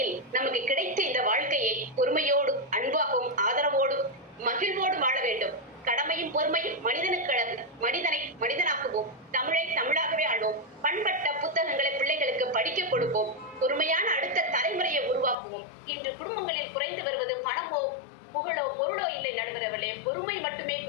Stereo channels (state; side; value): drops out; right; at 15.4 s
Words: நமக்கு கிடைத்த இந்த வாழ்க்கையை பொறுமையோடும் அன்பாகவும் ஆதரவோடும் மகிழ்வோடு வாழ வேண்டும். கடமையும் பொறுமையும் மனிதனை மனிதனாக்குவோம். தமிழை தமிழாகவே ஆளுவோம். பண்பட்ட புத்தகங்களை பிள்ளைகளுக்கு படிக்க கொடுப்போம். பொறுமையான அடுத்த தலைமுறையை உருவாக்குவோம். இன்று குடும்பங்களில் குறைந்து வருவது பணமோ புகழோ பொருளோ இல்லை நடுவர்களே, பொறுமை மட்டுமே